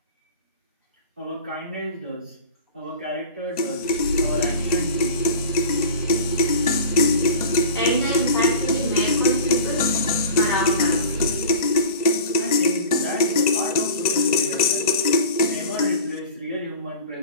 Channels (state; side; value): inverted; both; correlation -0.38